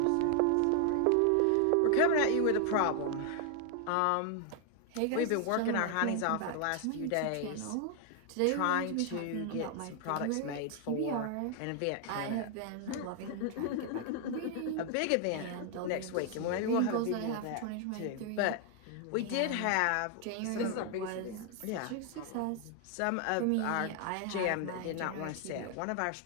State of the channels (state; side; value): different; both; correlation 0.00